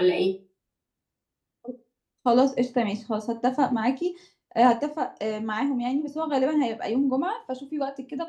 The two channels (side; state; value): both; identical; correlation 1.00